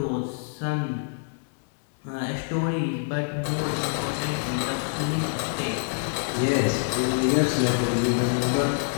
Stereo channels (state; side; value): silent; right; digital silence